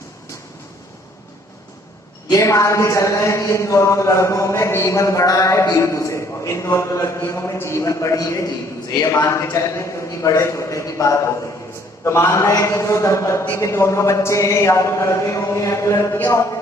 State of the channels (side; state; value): both; normal; correlation 0.61